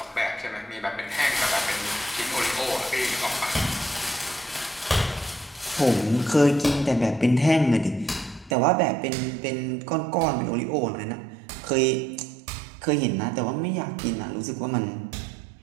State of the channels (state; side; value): drops out; left; at 8.6 s